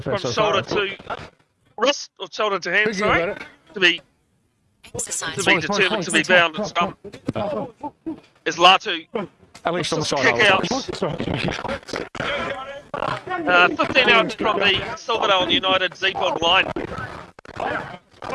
had from so far. shoulder to wrist, or shoulder to hand, Thinking sorry. about it. To be Exercise. determined to be bound at scrum. Is Latu At least on the just side. kick out. 15 out from the Silverdale United Z-Bod line.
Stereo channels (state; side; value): identical; both; correlation 1.00